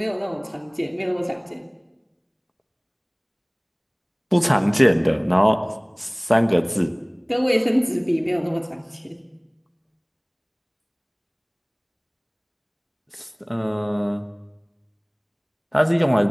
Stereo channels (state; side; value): identical; both; correlation 1.00